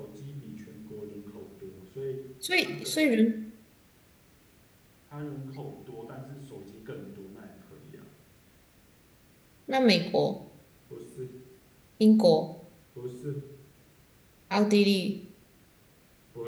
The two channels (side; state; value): both; identical; correlation 1.00